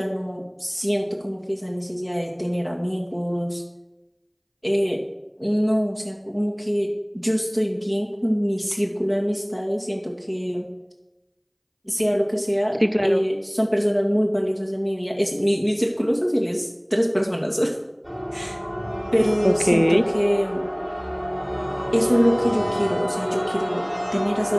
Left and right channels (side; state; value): both; identical; correlation 1.00